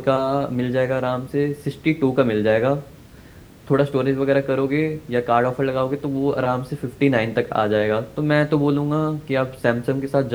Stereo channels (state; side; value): identical; both; correlation 1.00